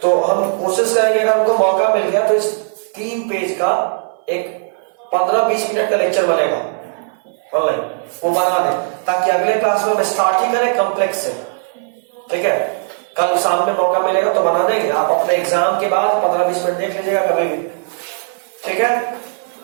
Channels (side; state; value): left; silent; 58 dB below the other